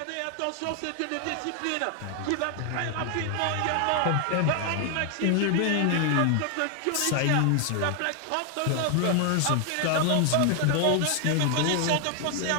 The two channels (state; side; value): different; both; correlation 0.00